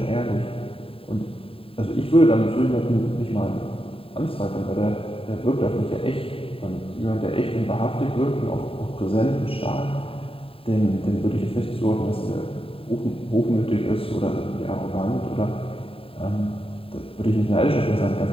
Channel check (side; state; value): right; late; 0.27 ms